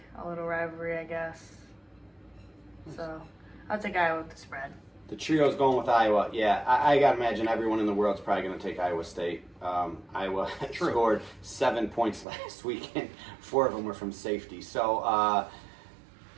a little rivalry, I guess. So, I'll take Iowa with the spread. The trio's going with Iowa. Yeah, I got to imagine everyone in the world's probably going to take Iowa State. Iowa scored 7 points last week, and 4 of them were from safety. So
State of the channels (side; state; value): left; drops out; at 12.2 s